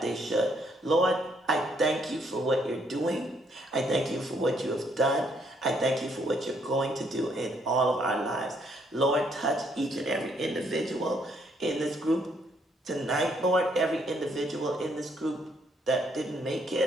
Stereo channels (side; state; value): both; normal; correlation 0.70